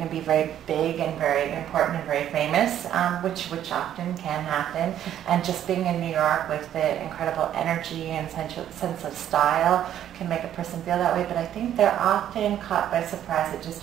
to be very big and very important and very famous, which often can happen. And just being in New York with the incredible energy and sense of style can make a person feel that way. But I think they're often caught by surprise at just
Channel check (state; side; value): quieter; left; 10.8 dB